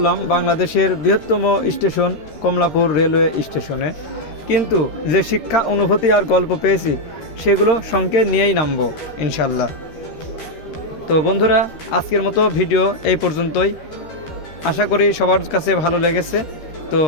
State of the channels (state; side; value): late; right; 13 ms